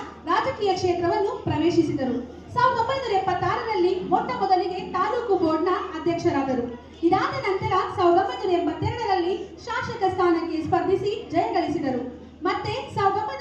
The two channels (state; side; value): identical; both; correlation 1.00